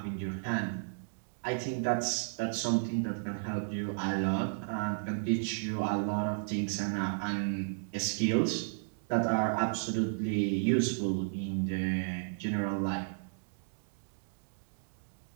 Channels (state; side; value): silent; left; digital silence